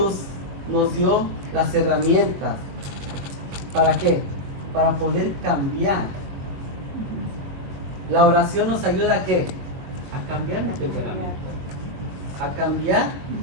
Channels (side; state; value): left; late; 21 ms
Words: nos dio las herramientas? ¿Para qué? Para poder cambiar. La oración nos ayuda a qué? A cambiar mi temperamento, a cambiar